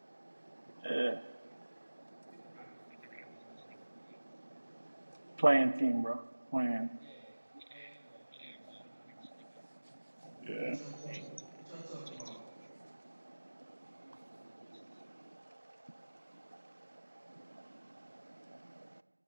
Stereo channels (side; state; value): both; inverted; correlation -1.00